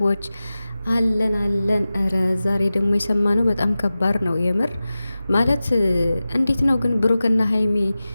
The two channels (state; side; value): inverted; both; correlation -0.95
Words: አለን። እረ ዛሬ ደግሞ የሰማነው በጣም ከባድ ነው የምር ማለት እንዴት ነው ግን ብሩክና ሀይሚ